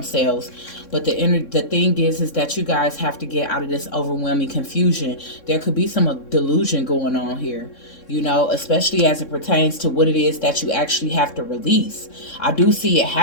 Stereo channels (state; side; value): late; right; 3.6 ms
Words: But the thing is that you guys have to get out of this overwhelming confusion. There could be some delusion going on here, you know, especially as it pertains to what it is that you actually have to release. I do see it